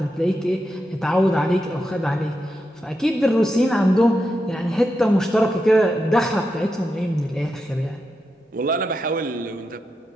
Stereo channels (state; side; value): normal; both; correlation 0.87